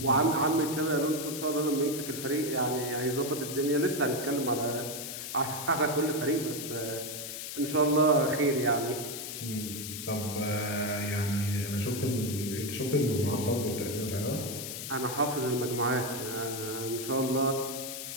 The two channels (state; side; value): noise; left; hiss, 7 dB below the sound